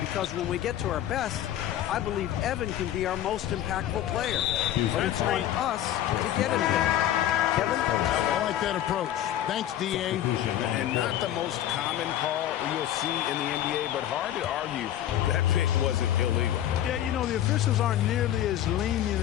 when we get to our best, I believe Evan can be our most impactful player. But it's on us to get him there. Kevin? I like that approach. Thanks, D.A. And not the most common call you'll see in the NBA, but hard to argue that pick wasn't illegal. Yeah, you know, the officials aren't nearly as lenient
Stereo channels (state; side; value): quieter; right; 11.8 dB